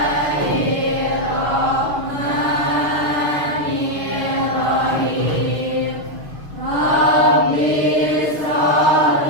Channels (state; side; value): late; left; 6.1 ms